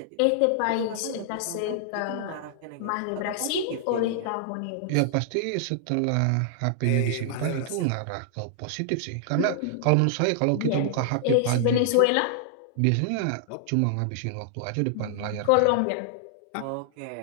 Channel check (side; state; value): both; different; correlation -0.01